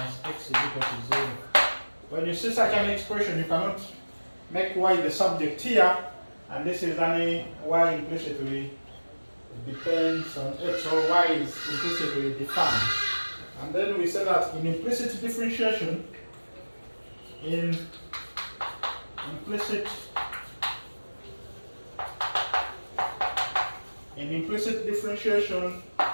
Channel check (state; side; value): inverted; both; correlation -1.00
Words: x is equal to 0. When you see such an expression, you cannot make y the subject here, and this is only y implicitly depends on x, or y is implicitly defined. And then we say that in implicit differentiation,